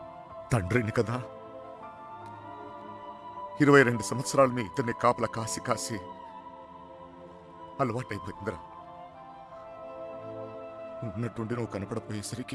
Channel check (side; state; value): both; identical; correlation 1.00